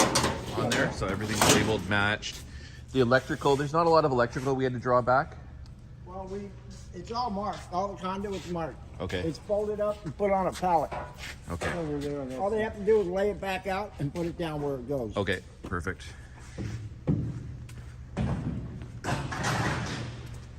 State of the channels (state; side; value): identical; both; correlation 1.00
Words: On there, so everything's labeled, matched. The electrical, there's not a lot of electrical we had to draw back. Well, it's all marked. All the conduit's marked. Okay. It's folded up and put on a pallet. Okay. Over there. All they have to do is lay it back out and put it down where it goes. Okay, perfect.